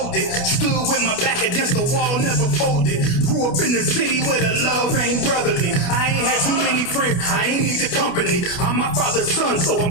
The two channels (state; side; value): late; right; 28 ms